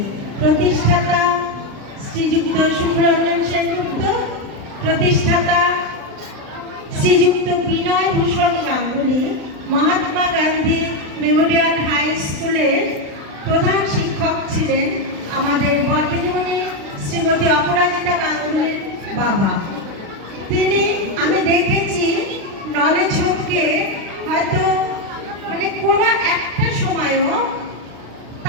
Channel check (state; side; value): late; left; 36 ms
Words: প্রতিষ্ঠাতা শ্রীযুক্ত সুব্রমণ্যম সেনগুপ্ত প্রতিষ্ঠাতা শ্রীযুক্ত বিনয় ভূষণ গাঙ্গুলি মহাত্মা গান্ধী মেমোরিয়াল হাই স্কুলের প্রধান শিক্ষক ছিলেন আমাদের বর্দিনীমণি শ্রীমতী অপরাজিতা গাঙ্গুলির বাবা তিনি আমি দেখেছি নলেজ হোমকে হয়তো মানে কোনো একটা সময়ও